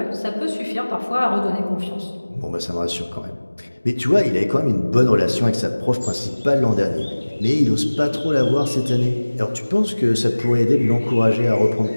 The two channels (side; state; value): both; inverted; correlation -1.00